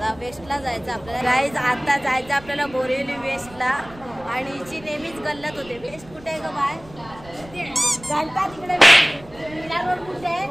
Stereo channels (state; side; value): noise; right; rumble, 21 dB below the sound